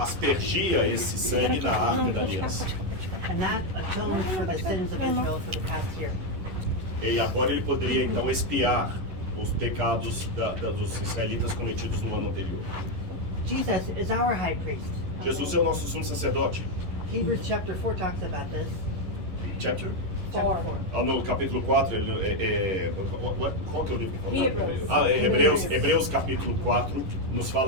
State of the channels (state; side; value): late; left; 11 ms